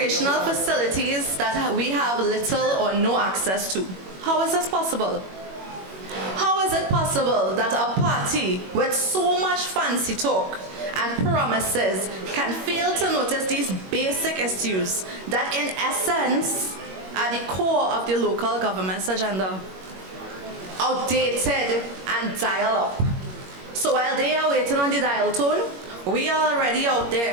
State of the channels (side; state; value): left; late; 21 ms